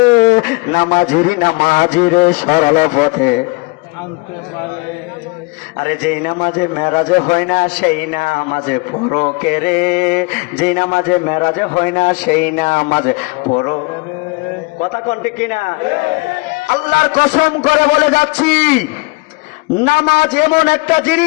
নামাজিরে সরল পথে আনতে পারে। আরে যেই নামাজে মেরাজে হয় না, সেই নামাজে পড়ো কে রে। যেই নামাজে মেরাজে হয় না, সেই নামাজে পড়ো। কথা কোনটি কিনা? আল্লাহর কসম করে বলে যাচ্ছি, নামাজ এমন একটা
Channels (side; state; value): right; quieter; 27.2 dB